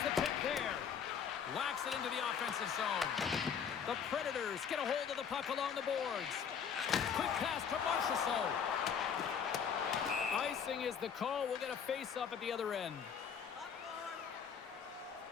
the pick there. Whacks it into the offensive zone. The Predators get a hold of the puck along the boards. Quick pass to Marchessault. Icing is the call. We'll get a face-up at the other end.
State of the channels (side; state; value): right; quieter; 7.2 dB